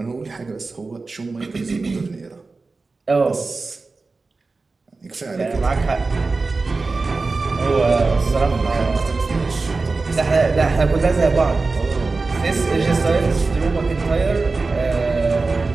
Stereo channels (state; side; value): quieter; left; 3.8 dB